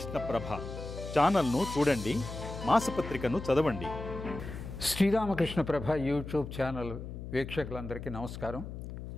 ప్రభ ఛానల్ను చూడండి, మాసపత్రికను చదవండి. శ్రీరామకృష్ణ ప్రభ యూట్యూబ్ ఛానల్ వీక్షకులందరికీ నమస్కారం.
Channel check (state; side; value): noise; left; hum, 9 dB below the sound